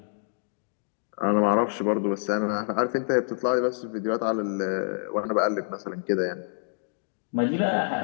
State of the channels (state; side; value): silent; right; digital silence